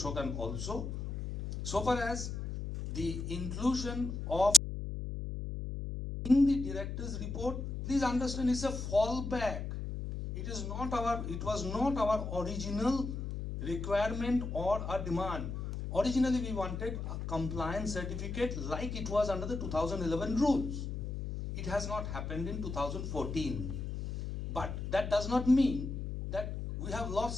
also. So far as the inclusion of in the director's report, please understand, it's a fallback. It was not our original requirement or a demand. Originally, we wanted a compliance certificate like it was under the 2011 rules. It has not happened in 2014. But that does not mean that we have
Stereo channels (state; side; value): noise; left; hum, 5 dB below the sound